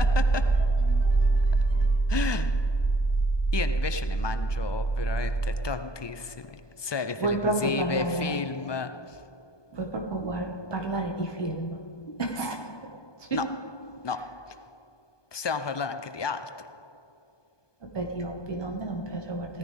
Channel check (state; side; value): late; right; 1.2 ms